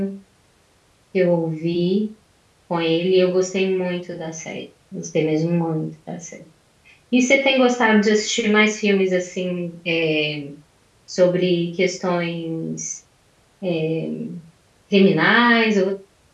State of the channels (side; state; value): both; identical; correlation 1.00